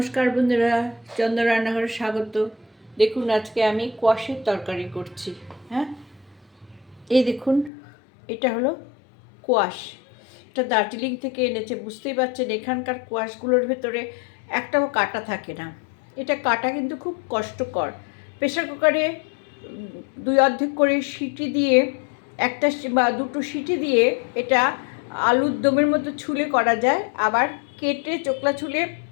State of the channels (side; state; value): right; drops out; at 7.7 s